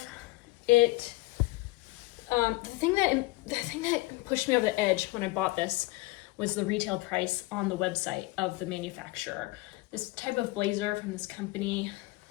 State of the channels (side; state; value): right; quieter; 20.9 dB